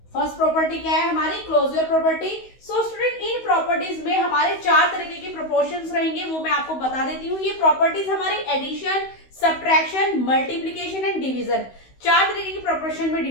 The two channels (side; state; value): right; late; 16 ms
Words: First property क्या है हमारी? Closure property. सो स्टूडेंट, इन प्रॉपर्टीज में हमारे 4 तरीके के प्रोपोर्शंस रहेंगे, वो मैं आपको बता देती हूँ। ये प्रॉपर्टीज हमारी addition, subtraction, multiplication and division, 4 तरीके की प्रोपोर्शन में